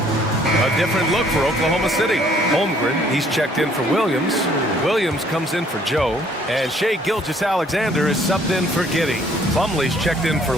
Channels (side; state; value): both; normal; correlation 0.61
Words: A different look for Oklahoma City. Holmgren, he's checked in for Williams. Williams comes in for Joe. And Shai Gilgeous-Alexander is subbed in for Giddey. Plumlee's checked in for